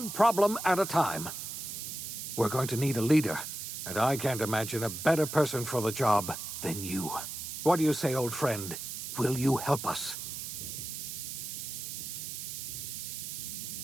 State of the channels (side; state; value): right; noise; hiss, 6 dB below the sound